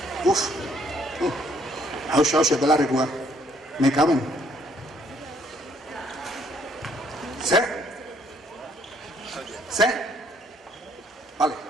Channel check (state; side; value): normal; both; correlation 0.66